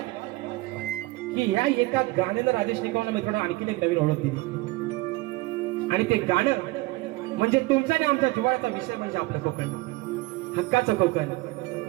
की ह्या एका गाण्यानं राजेश निकमला मित्रांनो आणखीन एक नवीन ओळख दिली. आणि ते गाणं म्हणजे तुमच्या आणि आमच्या जिव्हाळ्याचा विषय म्हणजे आपलं कोकण, हक्काचं कोकण,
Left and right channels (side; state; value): left; quieter; 20.7 dB